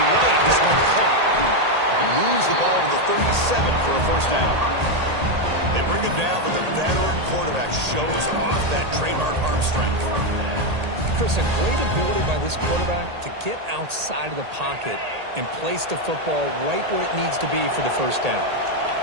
this one caught. He moves the ball to the 37 for a first down. They bring him down, but the veteran quarterback shows off that trademark arm strength. Chris, a great ability by this quarterback to get outside of the pocket and place the football right where it needs to be for the first down.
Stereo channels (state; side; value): late; left; 1.8 ms